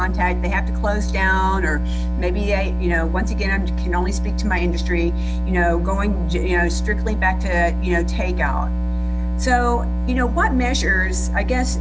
they have to close down, or maybe they, once again, I can only speak to my industry, going, strictly back to, takeout. So, what measures, I guess,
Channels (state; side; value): identical; both; correlation 1.00